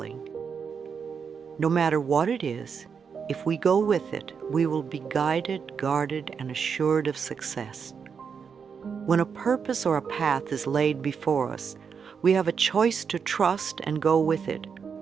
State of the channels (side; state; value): left; quieter; 6.3 dB